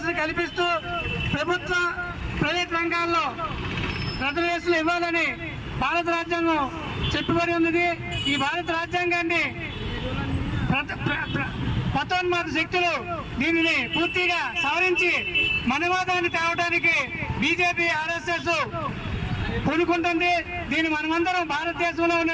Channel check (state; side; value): identical; both; correlation 1.00